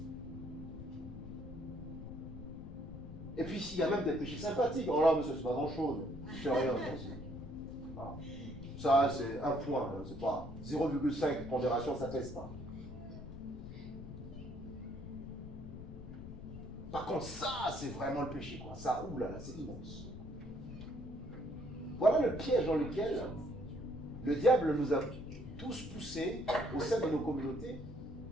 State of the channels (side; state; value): left; noise; rumble, 11 dB below the sound